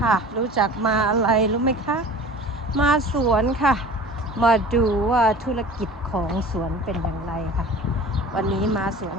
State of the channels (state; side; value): normal; both; correlation 0.41